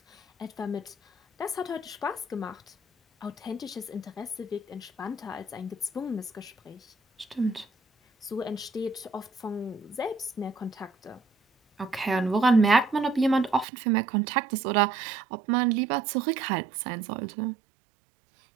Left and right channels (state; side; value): drops out; left; at 13.7 s